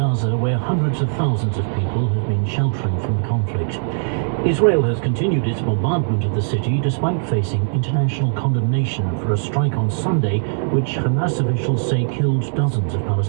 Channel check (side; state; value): left; silent; 66 dB below the other